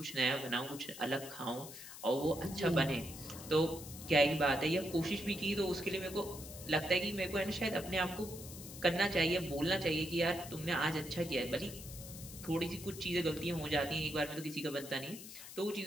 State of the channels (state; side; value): noise; left; hiss, 13 dB below the sound